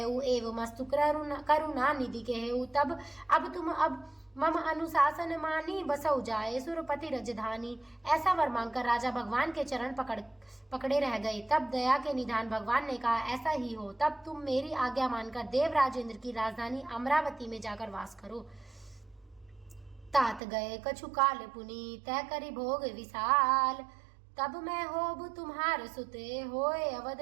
एव मस्तु करुणा निधि केहु। तब अब तुम मम अनुशासन मानी, बसौ जाए सुरपति रजधानी। ऐसा वर मांगकर राजा भगवान के चरण पकड़े रह गए। तब दया के निधान भगवान ने कहा, ऐसा ही हो। तब तुम मेरी आज्ञा मानकर देवराज इंद्र की राजधानी अमरावती में जाकर वास करो। तात गए कछु काल पुनि, तय करी भोग विशाल। तब मैं होब तुम्हार सुते, होए अवध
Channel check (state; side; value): drops out; left; at 20.4 s